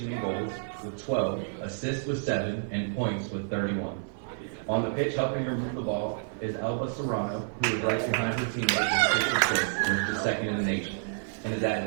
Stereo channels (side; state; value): left; silent; 58 dB below the other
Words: in goals with 12, assists with 7, and points with 31. On the pitch, helping her move the ball, is Alba Serrano, who is right behind her teammate with 6 assists, which is second in the nation, and has